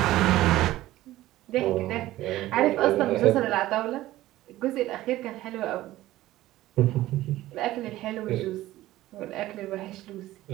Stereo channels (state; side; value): quieter; left; 15.8 dB